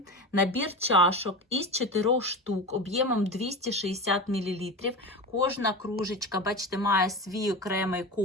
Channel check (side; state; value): both; normal; correlation 0.26